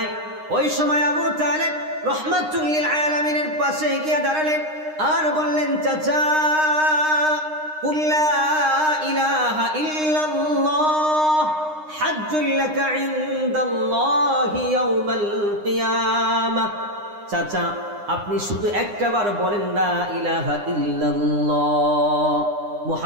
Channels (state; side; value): late; left; 9.8 ms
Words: ওই সময় আবু তালিব রাহমাতুল লিল আলামিনের পাশে গিয়ে দাঁড়ালেন আর বললেন, চাচা কুল লা ইলাহা ইল্লাল্লাহ হাজ্জুল লাকা ইনদাল্লাহি ইয়াউমাল কিয়ামাহ। চাচা আপনি শুধু একটাবার বলেন লা ইলাহা ইল্লাল্লাহ